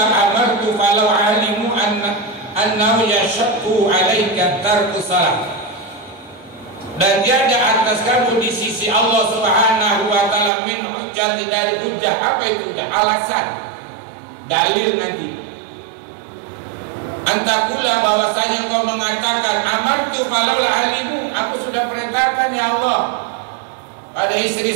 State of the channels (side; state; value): left; drops out; at 10.5 s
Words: amartu falau alimu annahu yashaqqu alayka tarku salat. Dan tiada atas kamu di sisi Allah Subhanahu wa ta'ala min hujjah, dari hujjah. Apa itu hujjah? Alasan, dalil nanti. Antakula, bahwasanya kau mengatakan amartu falau alimu, aku sudah perintahkan ya Allah pada